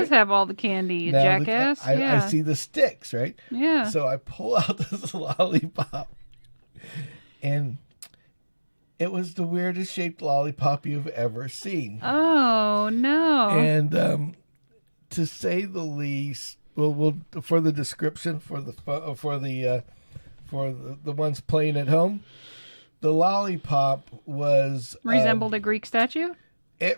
have all the candy, you jackass. I see the sticks, right? Yeah. So I pull out this lollipop, and it was the weirdest shaped lollipop you've ever seen. Oh no! And to say the least, we'll for the description for the ones playing at home, the lollipop was resembled a Greek statue. It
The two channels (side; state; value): both; inverted; correlation -1.00